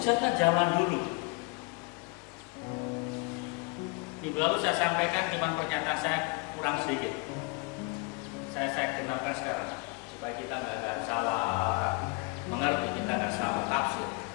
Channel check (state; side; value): quieter; right; 30.0 dB